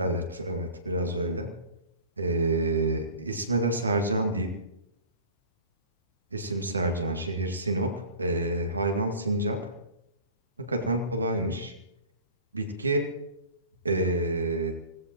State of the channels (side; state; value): both; inverted; correlation -0.41